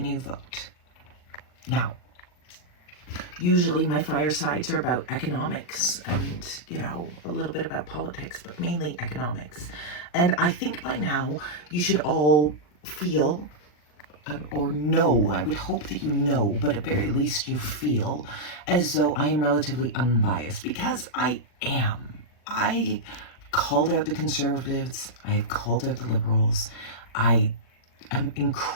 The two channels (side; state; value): right; late; 40 ms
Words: you vote. Now, usually my firesides are about economics and, a little bit about politics, but mainly economics. And I think by now you should all feel or know, I would hope that you know, but at very least you feel as though I am relatively unbiased, because I am. I called out the conservatives. I have called out the liberals. I am